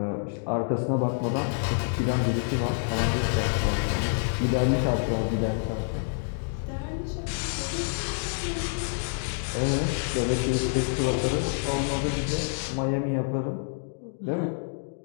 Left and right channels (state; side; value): silent; right; digital silence